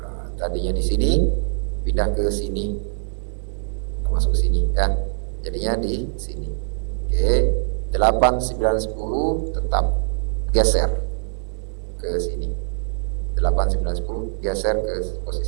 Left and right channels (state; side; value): silent; left; digital silence